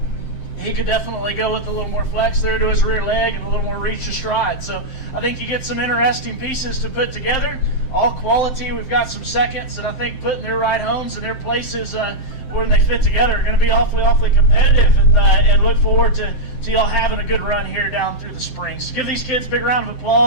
he could definitely go with a little more flex there to his rear leg and a little more reach to stride. So I think you get some interesting pieces to put together. All quality. We've got some seconds that I think put in their right homes and their places where they fit together are going to be awfully competitive, and look forward to y'all having a good run here down through the spring. So give these kids a big round of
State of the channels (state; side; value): late; right; 7.7 ms